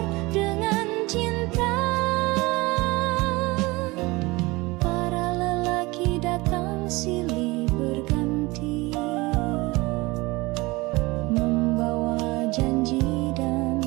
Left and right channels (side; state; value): left; quieter; 22.7 dB